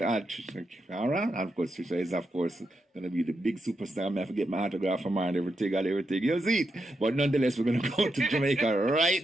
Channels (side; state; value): both; normal; correlation 0.85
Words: And of course, Trisha is, of course, going to be the big superstar. I'm going to get my autograph from her and everything, got everything. You see it. But nonetheless, we're going to go to Jamaica right